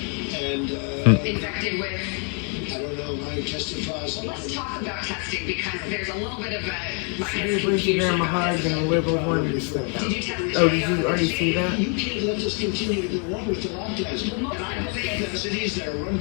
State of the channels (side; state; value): right; quieter; 39.5 dB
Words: and infected with? I don't know, I tested positive. Well, let's talk about testing, because there's a little bit of a, She gave Lindsey Graham a hug and the liberals wanted to step down. Did you test Oh, did you already see that? You can't let this continue to go on with the lockdowns. And I believe that cities that are run